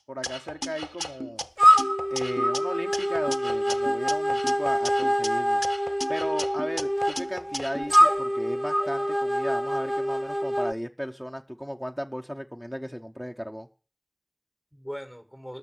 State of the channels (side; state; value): both; identical; correlation 1.00